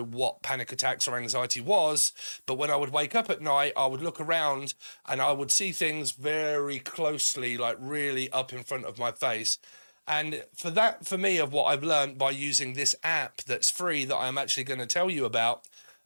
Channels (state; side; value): inverted; both; correlation -1.00